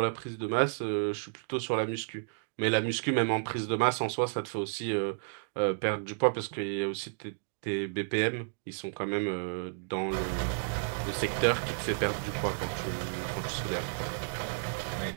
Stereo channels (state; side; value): silent; left; digital silence